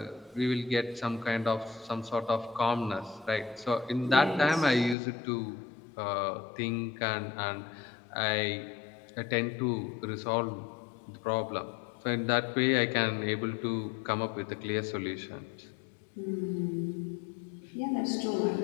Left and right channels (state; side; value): drops out; right; at 5.0 s